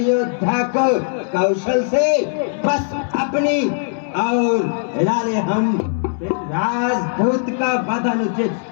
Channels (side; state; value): right; silent; 66 dB below the other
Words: को कौशल से बस अपनी और हिला ले हम। राजदूत का वध